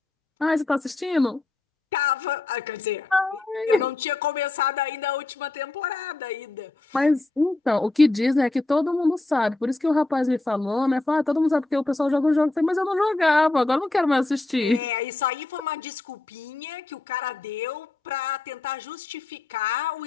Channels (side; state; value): right; quieter; 3.1 dB